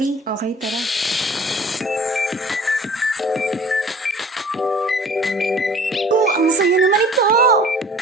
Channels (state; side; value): normal; both; correlation 0.48